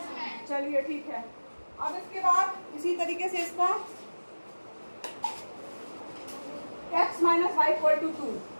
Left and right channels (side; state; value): both; inverted; correlation -1.00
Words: चलिए ठीक है। अब इसके बाद इसी तरीके से इसका x - y = 2